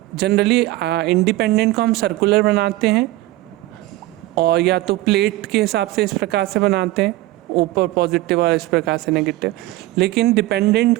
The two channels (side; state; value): left; quieter; 17.6 dB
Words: जनरली इंडिपेंडेंट को हम सर्कुलर बनाते हैं और या तो प्लेट के हिसाब से इस प्रकार से बनाते हैं, ऊपर पॉजिटिव और इस प्रकार से नेगेटिव। लेकिन डिपेंडेंट